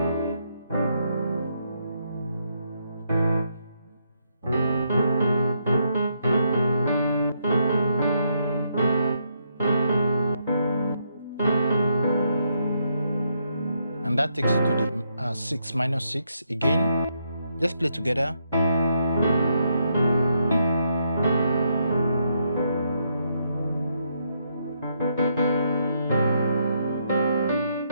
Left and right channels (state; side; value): inverted; both; correlation -0.77